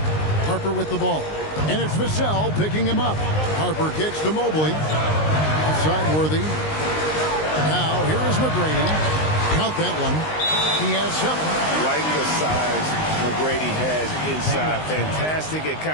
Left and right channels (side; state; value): right; late; 19 ms